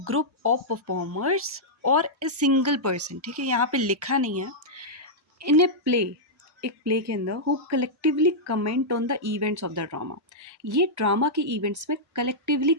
group of performers और ए सिंगल पर्सन। ठीक है, यहाँ पे लिखा नहीं है। इन ए प्ले, एक प्ले के अंदर who collectively comment on the events of the drama. ये ड्रामा के इवेंट्स में कलेक्टिवली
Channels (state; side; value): normal; both; correlation -0.09